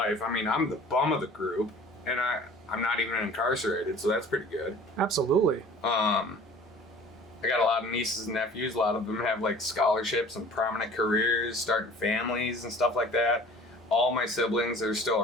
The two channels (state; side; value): normal; both; correlation 0.46